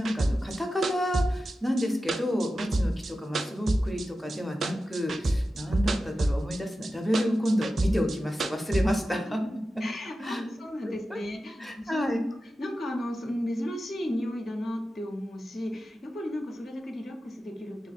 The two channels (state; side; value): normal; both; correlation 0.92